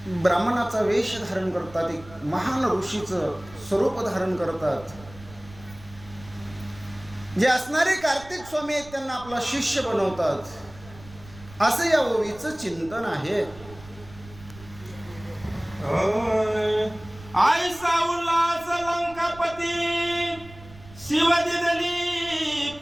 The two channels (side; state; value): right; noise; rumble, 19 dB below the sound